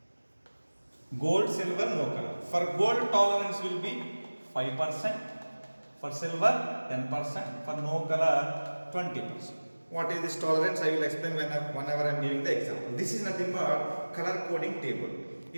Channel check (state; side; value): inverted; both; correlation -1.00